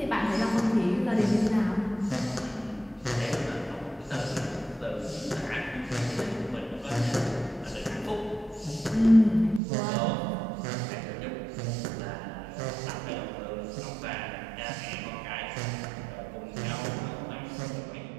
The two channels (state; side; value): drops out; left; at 9.6 s